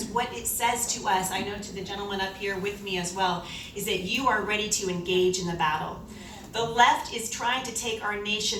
what it says to us, I know to the gentleman up here with me as well, is that you are ready to engage in the battle. The left is trying to take our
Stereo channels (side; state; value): both; identical; correlation 1.00